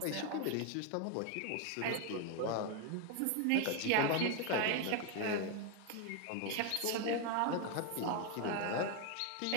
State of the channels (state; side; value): different; both; correlation 0.01